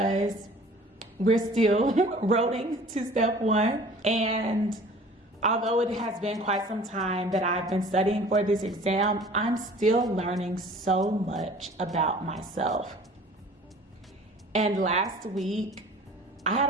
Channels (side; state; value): both; normal; correlation 0.47